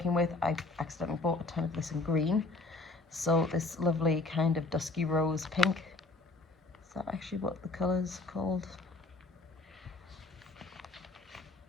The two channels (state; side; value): quieter; right; 3.3 dB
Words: with, I accidentally bought a ton of this in green. So this lovely kind of dusky rose pink. Is that actually what the color's called?